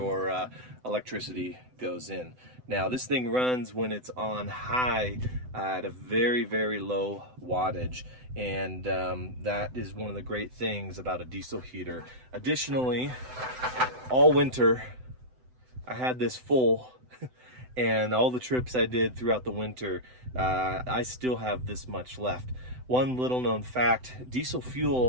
electricity goes in. Now this thing runs when it's on high at a very, very low wattage, and that is one of the great things about a diesel heater. Additionally, all winter I had this full, and all the trips I did throughout the winter, I still have this much left. One little known fact, diesel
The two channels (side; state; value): left; late; 7.9 ms